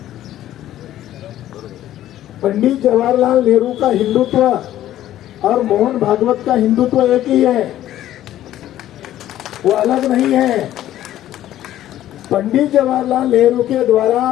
पंडित जवाहरलाल नेहरू का हिंदुत्व और मोहन भागवत का हिंदुत्व एक ही है, वो अलग नहीं है। पंडित जवाहरलाल नेहरू के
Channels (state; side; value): quieter; right; 12.9 dB